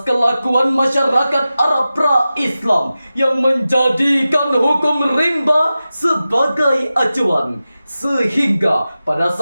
kelakuan masyarakat Arab pra-Islam yang menjadikan hukum rimba sebagai acuan. Sehingga pada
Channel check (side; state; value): both; inverted; correlation -0.94